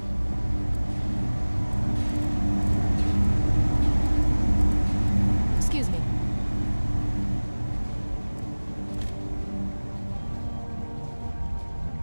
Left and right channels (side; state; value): both; inverted; correlation -1.00